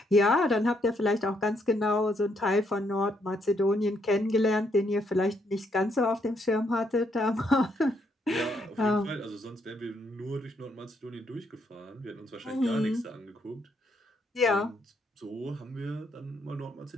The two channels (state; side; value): normal; both; correlation 0.74